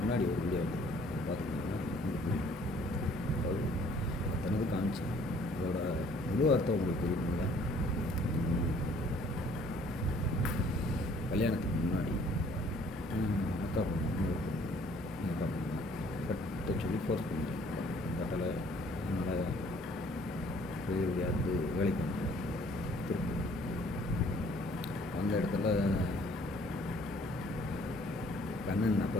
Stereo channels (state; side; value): normal; both; correlation 0.58